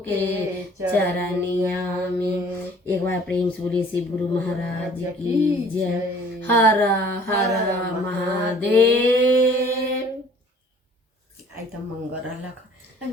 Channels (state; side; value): normal; both; correlation 0.53